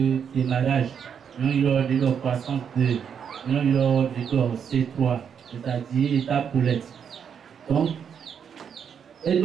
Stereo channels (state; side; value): quieter; left; 7.5 dB